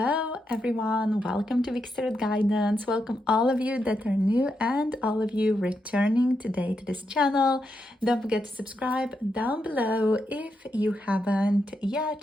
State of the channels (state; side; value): normal; both; correlation 0.83